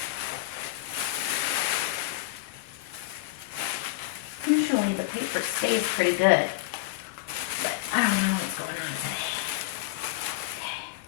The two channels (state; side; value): quieter; right; 18.2 dB